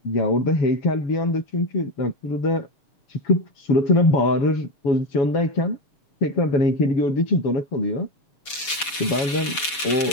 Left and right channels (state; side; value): late; right; 7.0 ms